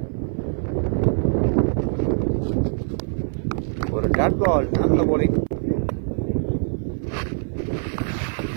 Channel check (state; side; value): silent; left; 56 dB below the other